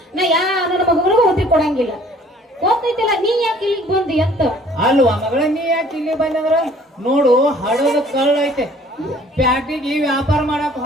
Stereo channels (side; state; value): both; normal; correlation 0.55